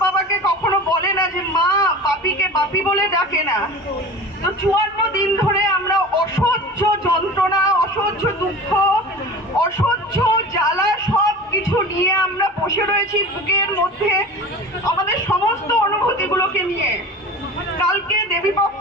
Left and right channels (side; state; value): both; normal; correlation 0.36